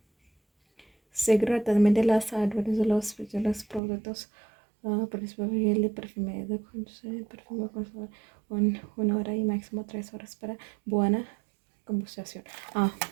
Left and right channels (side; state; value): left; drops out; at 3.8 s